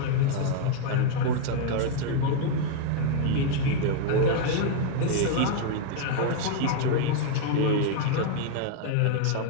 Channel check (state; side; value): different; both; correlation 0.00